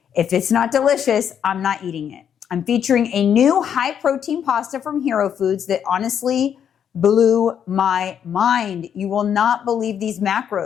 if it's not delicious, I'm not eating it. I'm featuring a new high protein pasta from Hero Foods that honestly blew my mind. You will not believe these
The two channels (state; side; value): quieter; right; 8.6 dB